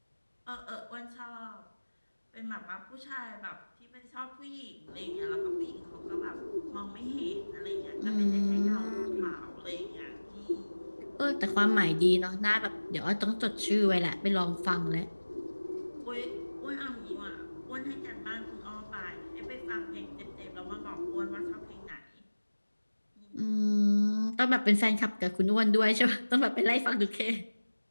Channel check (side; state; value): both; inverted; correlation -1.00